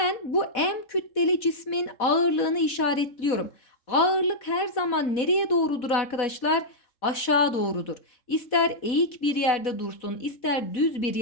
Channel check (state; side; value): late; right; 4.1 ms